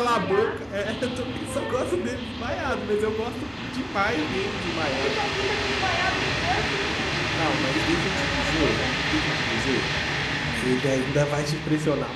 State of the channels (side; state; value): both; identical; correlation 1.00